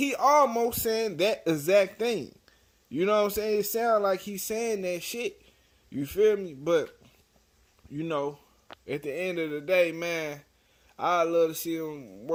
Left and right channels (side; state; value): both; identical; correlation 1.00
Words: almost saying that exact thing. You know what I'm saying? It sounds like he's saying that shit. You feel me? But, you know, at the end of the day, man, I'd love to see them